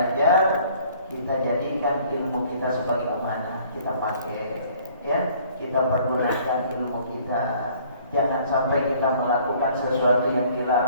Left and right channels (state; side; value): inverted; both; correlation -0.57